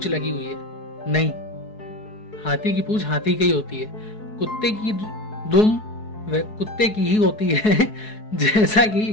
लगी हुई है? नहीं, हाथी की पूंछ हाथी की ही होती है। कुत्ते की दुम वह कुत्ते की ही होती है। जैसा कि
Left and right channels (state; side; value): late; right; 4.7 ms